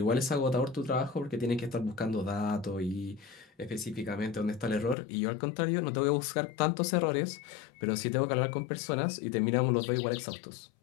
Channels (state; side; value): drops out; right; at 5.0 s